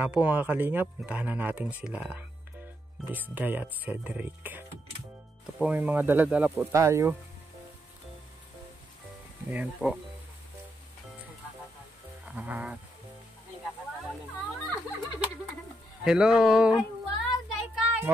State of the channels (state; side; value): normal; both; correlation 0.80